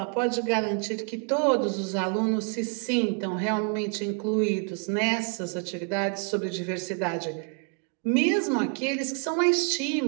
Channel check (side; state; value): left; quieter; 38.5 dB